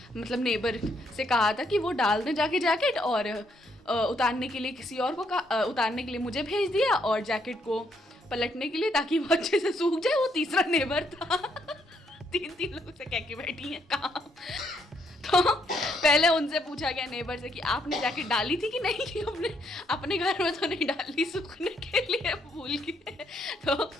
मतलब नेबर से कहा था कि वो डाल दें जाके जैकेट, और उतारने के लिए किसी और को उतारने के लिए मुझे भेज दिया, और जैकेट को पलटने के लिए ताकि वो अच्छे से सूख जाए। वो तीसरा नेबर था। तीन लोगों से कह के बैठी है काम। तो पहले उनसे पूछा गया नेबर से कि आपने जैकेट डाली थी कि नहीं, कि अपने घर में तो नहीं डाली, सूखने के लिए भूल गए। तो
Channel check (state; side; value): normal; both; correlation 0.73